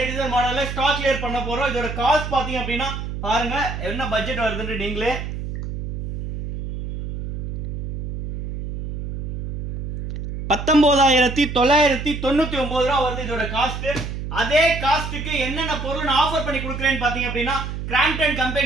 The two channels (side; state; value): right; noise; hum, 5 dB below the sound